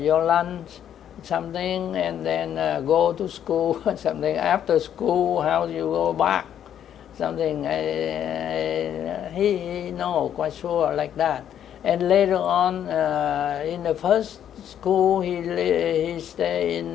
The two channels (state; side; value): quieter; right; 9.9 dB